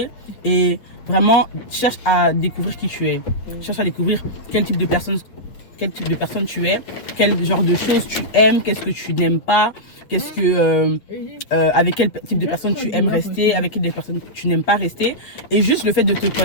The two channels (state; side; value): late; right; 8.6 ms